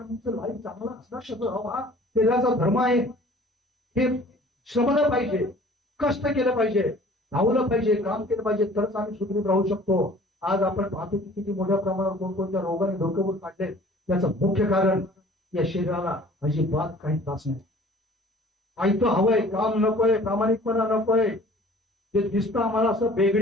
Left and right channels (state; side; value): normal; both; correlation 0.50